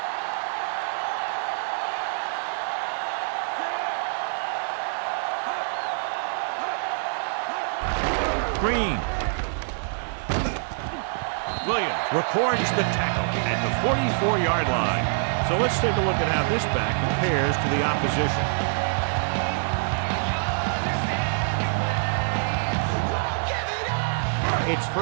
Green. Williams records the tackle at the 44-yard line. So let's take a look at how this back compares to the opposition. It's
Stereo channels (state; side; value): silent; left; 59 dB below the other